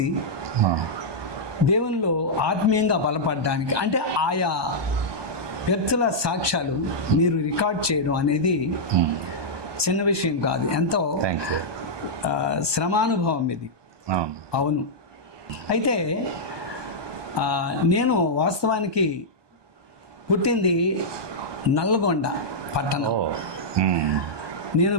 దేవునిలో ఆత్మీయంగా బలపడడానికి, అంటే ఆయా వ్యక్తుల సాక్ష్యాలు మీరు రికార్డ్ చేయడం అనేది చిన్న విషయం కాదు. ఎంతో శ్రమానుభవం ఇది. అవును. అయితే నేను వాస్తవానికి పుట్టింది నల్గొండ పట్టణం. నేను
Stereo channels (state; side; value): late; left; 1.2 ms